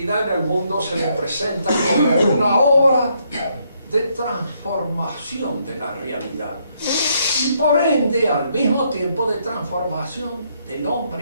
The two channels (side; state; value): both; inverted; correlation -0.73